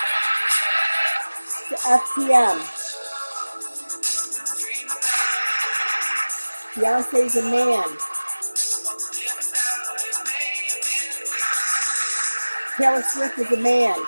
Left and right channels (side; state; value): both; inverted; correlation -1.00